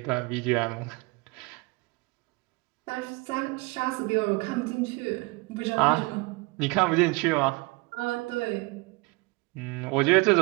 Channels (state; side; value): quieter; left; 25.4 dB